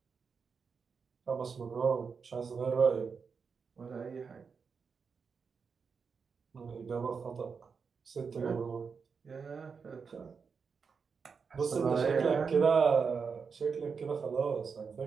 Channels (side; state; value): left; quieter; 5.6 dB